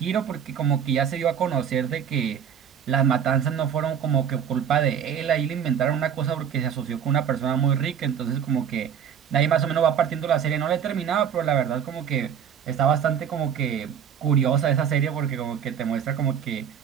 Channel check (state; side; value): quieter; left; 8.3 dB